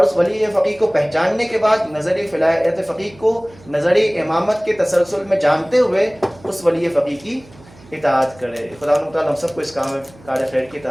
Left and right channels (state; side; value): noise; right; hum, 24 dB below the sound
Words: اس ولی فقیہ کو پہچاننے کے بعد نظری ولایت فقیہ کو نظری امامت کے تسلسل میں جانتے ہوئے اس ولی فقیہ کی اطاعت کرے. خدا تعالیٰ ہم سب کو اس کام میں کار خیر کی